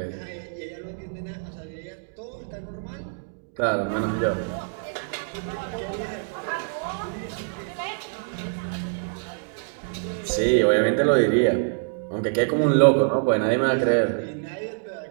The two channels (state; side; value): silent; left; digital silence